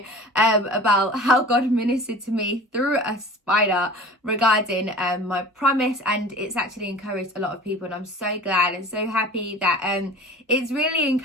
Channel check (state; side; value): normal; both; correlation 0.41